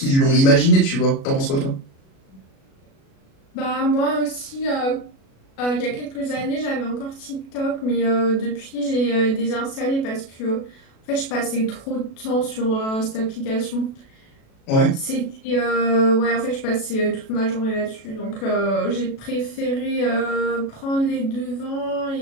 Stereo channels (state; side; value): late; right; 37 ms